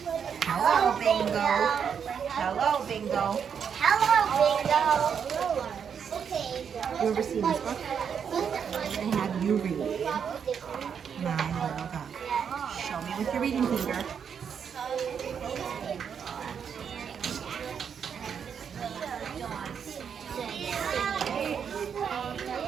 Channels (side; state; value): left; quieter; 7.3 dB